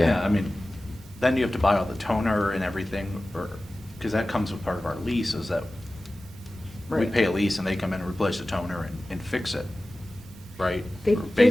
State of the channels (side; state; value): both; normal; correlation 0.96